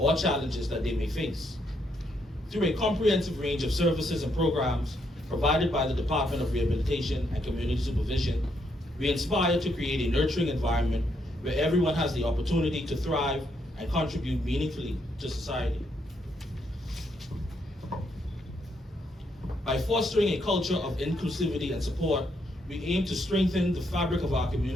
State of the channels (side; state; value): both; normal; correlation 0.76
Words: challenges that they may face. Through a comprehensive range of services and programs provided by the Department of Rehabilitation and Community Supervision, we aspire to create a nurturing environment where everyone has the opportunity to thrive and contribute meaningfully to society. By fostering a culture of inclusivity and support, we aim to strengthen the fabric of our